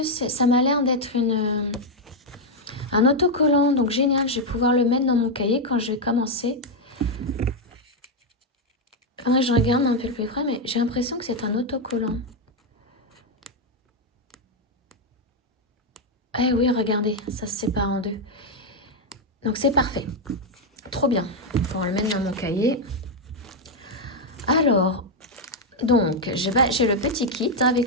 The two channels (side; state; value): both; normal; correlation 0.02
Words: ça m'a l'air d'être un autocollant. Donc génial, je vais pouvoir le mettre dans mon cahier quand je vais commencer. Faudrait que je regarde un peu le plus près, mais j'ai l'impression que c'est un autocollant. Eh oui, regardez, ça se sépare en deux. Donc c'est parfait. Trop bien. Il faut le mettre dans mon cahier. Alors, donc, j'ai le petit kit